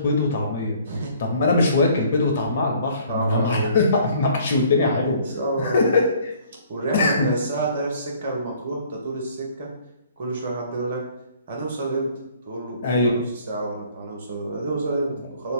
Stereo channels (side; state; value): both; inverted; correlation -0.57